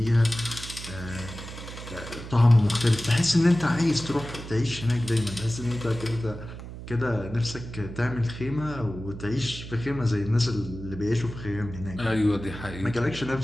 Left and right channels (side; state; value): right; noise; hum, 11 dB below the sound